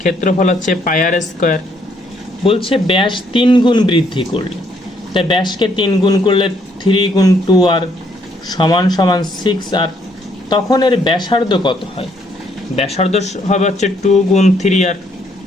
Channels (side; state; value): both; normal; correlation 0.69